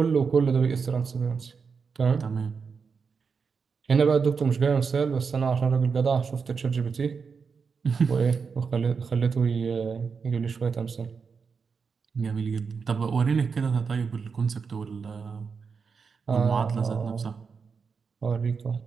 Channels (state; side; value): quieter; left; 5.5 dB